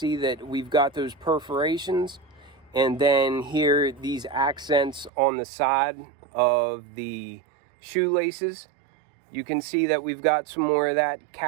that we've got those perforations. And then here, these accents on the side of the shoelaces. You can see that we've got some more of that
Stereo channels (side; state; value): left; drops out; at 5.1 s